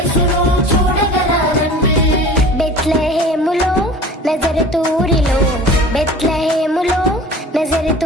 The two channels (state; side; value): normal; both; correlation 0.42